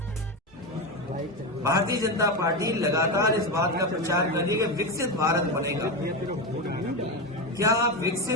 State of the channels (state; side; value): normal; both; correlation 0.15